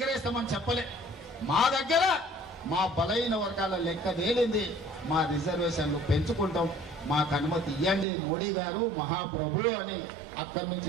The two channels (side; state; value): left; drops out; at 8.1 s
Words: చెప్పలే. మా దగ్గర మా బలైన వర్గాల లెక్క తేలింది, మా రిజర్వేషన్లు పెంచుకుంటాం, మాకు అనుమతి ఇవ్వండి మోడీ గారు మహాప్రభు అని అక్కడి